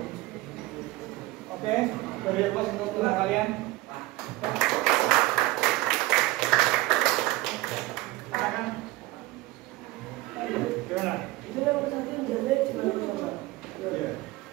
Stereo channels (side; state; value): left; quieter; 18.8 dB